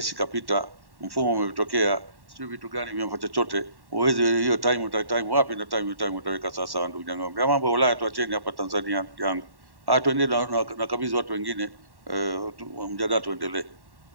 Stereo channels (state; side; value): late; left; 1.1 ms